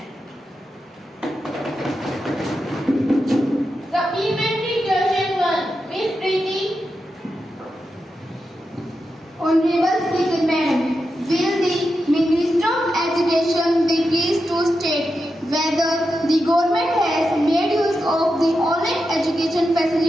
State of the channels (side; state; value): both; normal; correlation 0.88